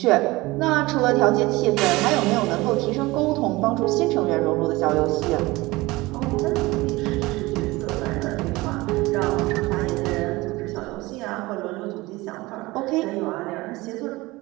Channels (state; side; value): quieter; left; 20.8 dB